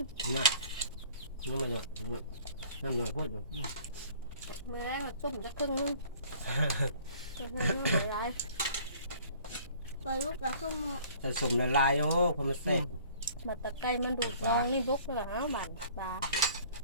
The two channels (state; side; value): inverted; both; correlation -0.52